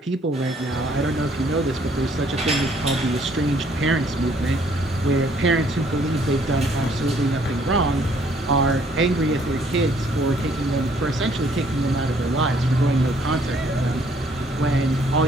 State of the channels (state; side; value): normal; both; correlation 0.63